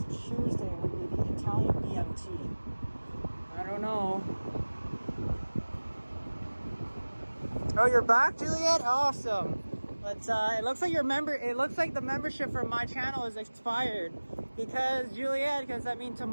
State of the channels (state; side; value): inverted; both; correlation -1.00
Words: Tuesday. We'll be the Italian BMT. I don't know. Oh, you're back, Juliet? Awesome. But it looks like the membership for my channel is expired. Because Juliet,